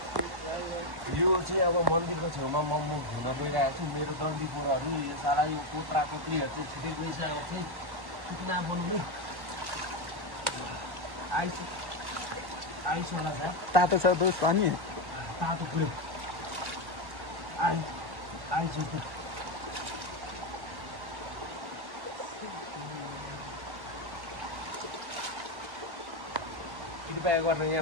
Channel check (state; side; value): late; left; 1.1 ms